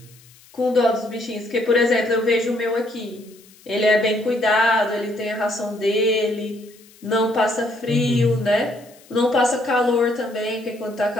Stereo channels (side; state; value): left; noise; hiss, 26 dB below the sound